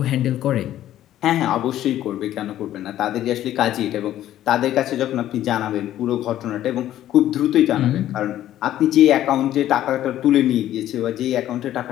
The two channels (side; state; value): right; quieter; 12.7 dB